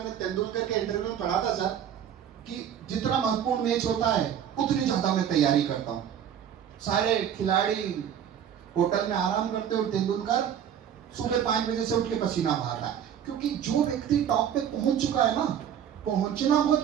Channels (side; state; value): left; quieter; 9.1 dB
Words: तेंदुलकर के इंटरव्यू में पढ़ा था सर कि जितना महत्वपूर्ण मैच होता है उतनी ज्यादा मैं तैयारी करता हूं। सारे खिलाड़ी होटल में आराम करते और तेंदुलकर सुबह 5 बजे से उठ के पसीना बहाता है, क्योंकि जो व्यक्ति टॉप पे पहुंच चुका है ना, पहुंचना बहुत